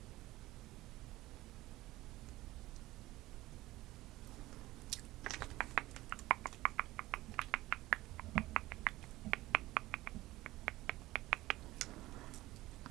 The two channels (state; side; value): quieter; left; 17.7 dB